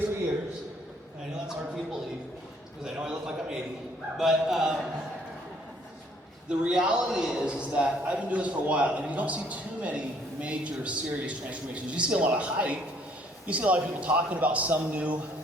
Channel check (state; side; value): normal; both; correlation 0.63